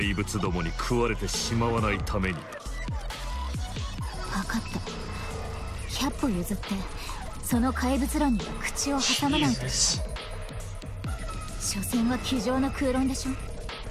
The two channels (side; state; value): both; identical; correlation 1.00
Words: 物どもに食われてしまわないために。分かった。100歩譲ってその怪物論には口を挟まないと。所詮は机上の空論でしょ。